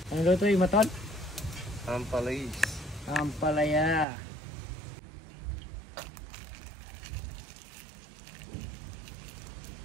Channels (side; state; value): left; drops out; at 4.0 s